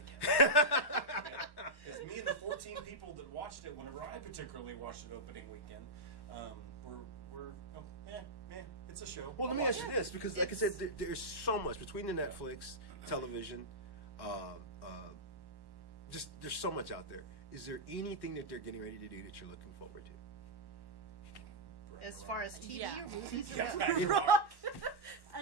again. Because me and the 14 people that watched it, whenever I particularly watched it opening weekend, it's a show. Well, let me ask you this, because like I said, there's so much between the Netflix, television, just there's so much out there. Is there anything that they're getting ready to do that you're looking forward to? As far as TV Yeah. or movies? Yeah,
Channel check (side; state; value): right; late; 1.1 ms